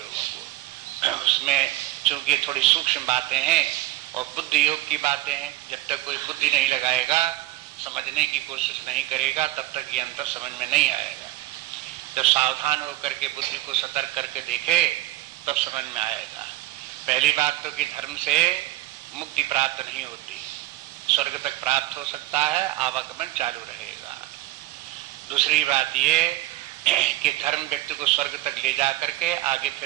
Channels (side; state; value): left; quieter; 16.8 dB